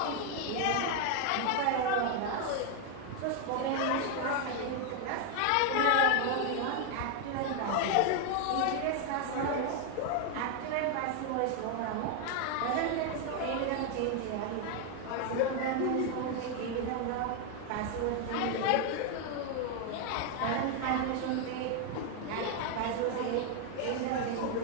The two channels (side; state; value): both; different; correlation 0.01